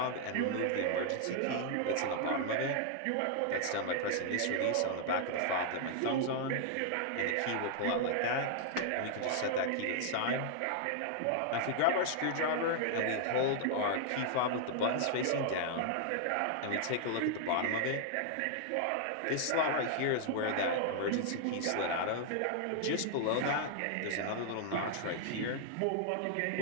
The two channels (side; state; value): both; different; correlation 0.00